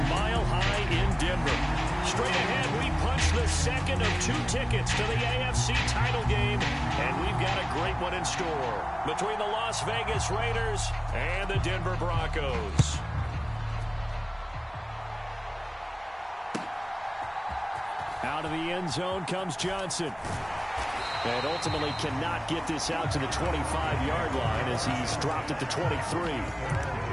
Mile High in Denver. Straight ahead, we punch the second of 2 tickets to the AFC title game, and we've got a great one in store between the Las Vegas Raiders and the Denver Broncos. Out of the end zone comes Johnson. And ultimately cannot get this out to the 25-yard line as he's dropped at the 23.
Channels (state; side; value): identical; both; correlation 1.00